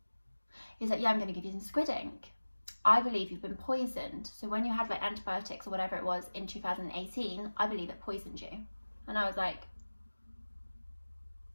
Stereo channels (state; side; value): inverted; both; correlation -1.00